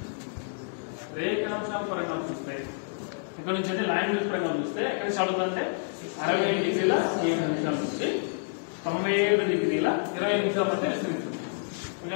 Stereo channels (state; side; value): silent; right; digital silence